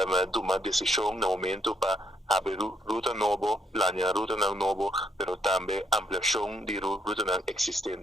tomando decisão no momento para abrir ruta nova, planear ruta nova, mas também ampliação de ruta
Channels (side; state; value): both; normal; correlation 0.73